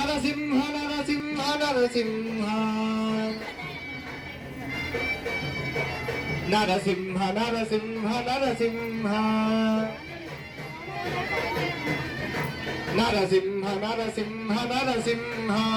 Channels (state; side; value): identical; both; correlation 1.00